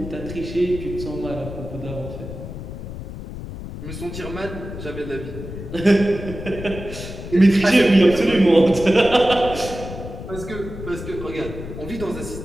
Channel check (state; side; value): noise; left; rumble, 10 dB below the sound